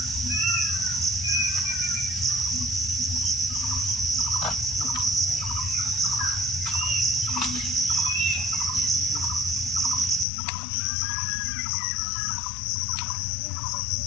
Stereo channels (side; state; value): right; drops out; at 10.2 s